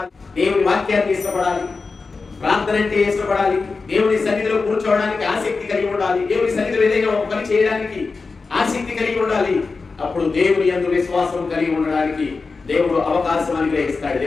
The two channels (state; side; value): quieter; right; 4.3 dB